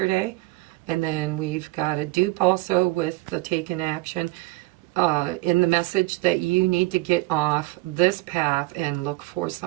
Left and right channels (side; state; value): left; quieter; 20.9 dB